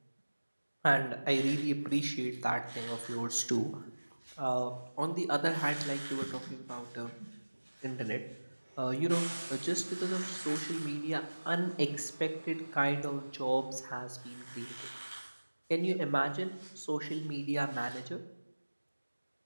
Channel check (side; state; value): both; inverted; correlation -1.00